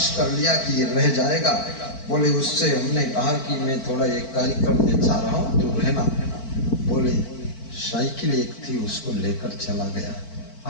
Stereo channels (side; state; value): right; late; 4.5 ms